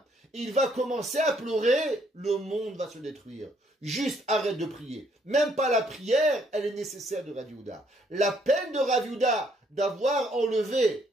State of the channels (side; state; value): both; normal; correlation 0.68